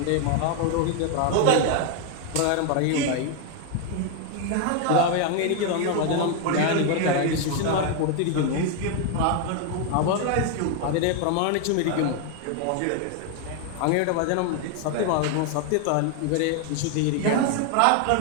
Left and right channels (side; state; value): both; different; correlation 0.01